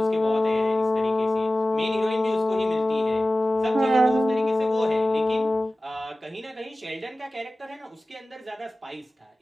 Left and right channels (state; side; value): normal; both; correlation 0.96